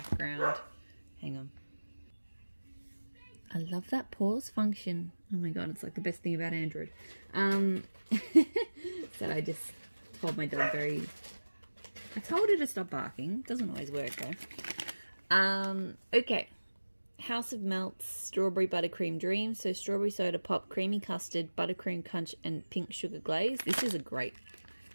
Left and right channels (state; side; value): inverted; both; correlation -1.00